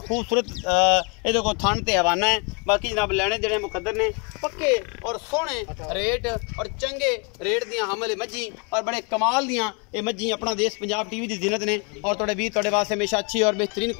खूबसूरत ये को थन ते हवाना है। बाकी जनाब लेने देने मुकद्दर ने, पक्के और सोहने रेट और चंगे रेट दियां हमल मज्जी और बड़े कमाल दियां ये मज्जी अपना देश पंजाब टीवी की जीनत ने और तुहाडे वीर तुहाडे वास्ते हमेशा अच्छी और बेहतरीन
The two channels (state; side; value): quieter; right; 33.0 dB